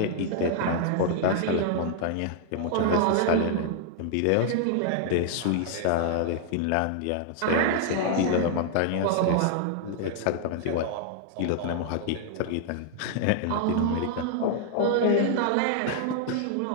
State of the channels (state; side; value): different; both; correlation -0.01